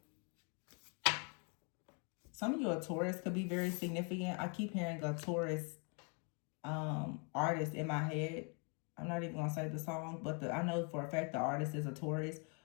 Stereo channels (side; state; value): right; quieter; 37.0 dB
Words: Some of you, a Taurus could be very significant. I keep hearing a Taurus artist in my head. I'm not even going to say the song, but I know for a fact the artist is a Taurus.